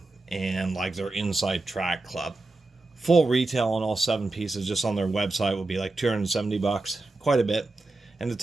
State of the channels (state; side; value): quieter; left; 3.1 dB